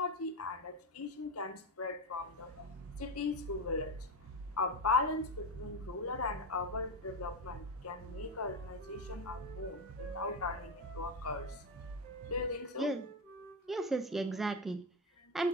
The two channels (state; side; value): normal; both; correlation 0.14